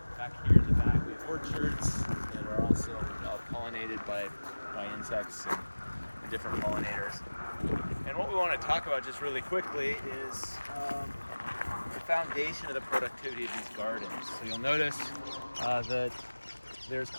back here in the back we have orchards that are also pollinated by insects and different pollinators. And what we want to talk about just really quickly is the foundation of the productivity of these gardens. So you'll notice that there's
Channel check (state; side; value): inverted; both; correlation -1.00